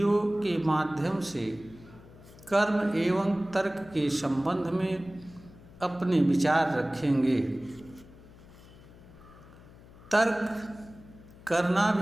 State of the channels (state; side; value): noise; left; hum, 21 dB below the sound